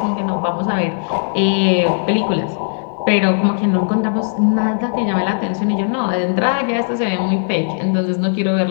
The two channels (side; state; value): right; silent; 67 dB below the other